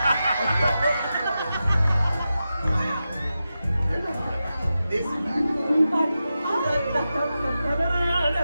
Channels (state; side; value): inverted; both; correlation -0.91